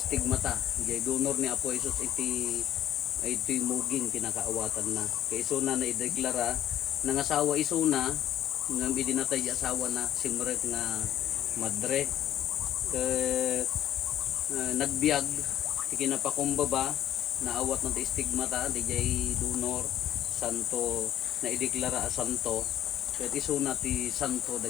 Jay donor ni Apo Jesus ito'y muging kinakaawatan na. Kaya isuna na ideklara ng asawa isuna ng idinatay asawa na simret nga madre nagbiag ti kinapakumbaba naawat ng stigmata di jay donor santo na ideklara a santo kaya isuna ti santo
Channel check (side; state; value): right; quieter; 11.8 dB